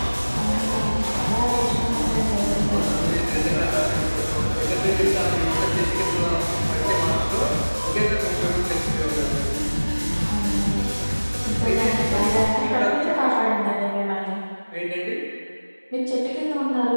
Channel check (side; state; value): both; inverted; correlation -1.00